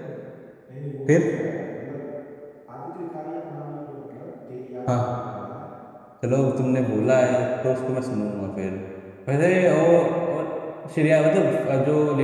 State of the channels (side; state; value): both; identical; correlation 1.00